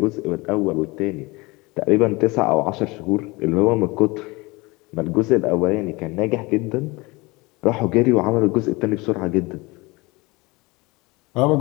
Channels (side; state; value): right; quieter; 23.9 dB